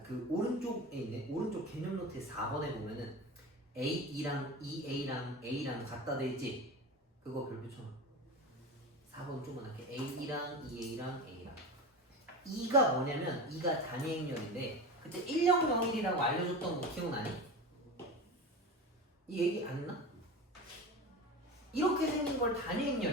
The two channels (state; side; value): normal; both; correlation 0.27